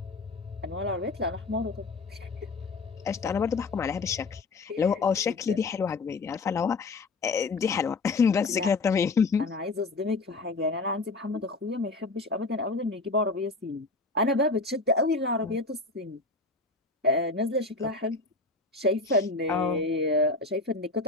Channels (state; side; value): quieter; right; 3.5 dB